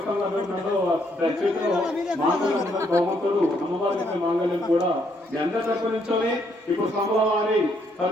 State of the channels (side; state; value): both; normal; correlation 0.72